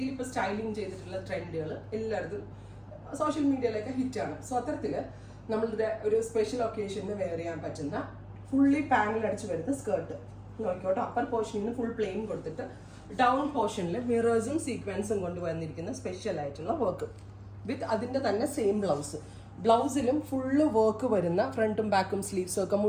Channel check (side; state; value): both; identical; correlation 1.00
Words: ഇപ്പോൾ സ്റ്റൈലിംഗ് ചെയ്തിട്ടുള്ള ട്രെൻഡുകൾ എല്ലായിടത്തും സോഷ്യൽ മീഡിയയിലൊക്കെ ഹിറ്റാണ്. സോ അത്തരത്തിൽ നമ്മളുടെ ഒരു സ്പെഷ്യൽ ഒക്കേഷന് വെയർ ചെയ്യാൻ പറ്റുന്ന ഫുള്ളി പാനൽ അടിച്ച് വരുന്ന സ്കേർട്ട് നോക്കിക്കോട്ടെ. അപ്പർ പോർഷനിൽ നിന്ന് ഫുൾ പ്ലെയിൻ കൊടുത്തിട്ട് ഡൗൺ പോർഷനിൽ മിറേഴ്സും സീക്വൻസും കൊണ്ട് വന്നിരിക്കുന്ന സ്പെഷ്യൽ ആയിട്ടുള്ള വർക്ക് വിത്ത് അതിൻ്റെ തന്നെ സെയിം ബ്ലൗസ്. ബ്ലൗസിലും ഫുള്ള് വർക്ക് വരുന്ന, ഫ്രണ്ടും ബാക്കും സ്ലീവ്സും ഒക്കെ